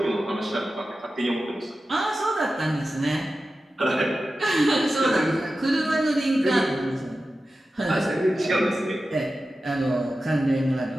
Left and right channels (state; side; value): normal; both; correlation 0.93